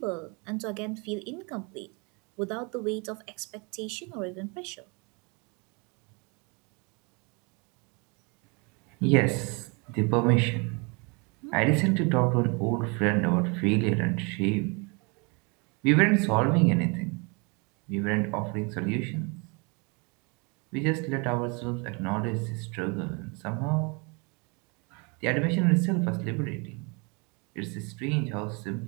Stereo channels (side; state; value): left; quieter; 31.4 dB